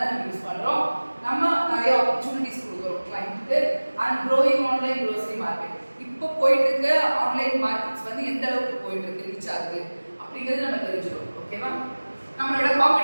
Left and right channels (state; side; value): inverted; both; correlation -1.00